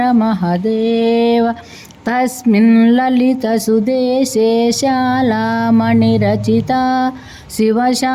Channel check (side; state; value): both; identical; correlation 1.00